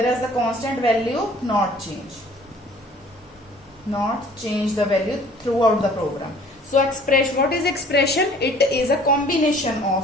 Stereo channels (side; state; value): both; normal; correlation 0.53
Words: the constant value not change the value throughout the program. So what is expression? It is a combination